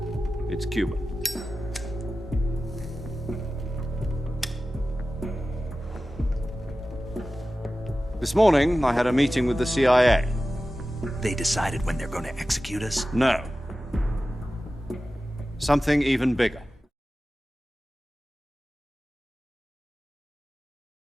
It's Cuban. This morning, I had a meeting with the CIA. They decided when they're going to execute us? No. Something even bigger.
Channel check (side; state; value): both; normal; correlation 0.95